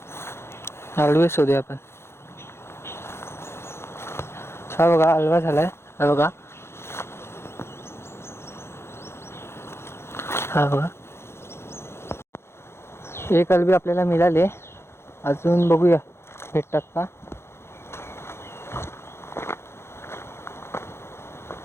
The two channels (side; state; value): right; late; 0.12 ms